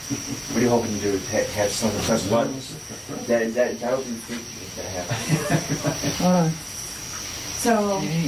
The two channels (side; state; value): both; identical; correlation 1.00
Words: What are you hoping to do? Have someone press buttons? That would be freaky if that happened. Hold on. So,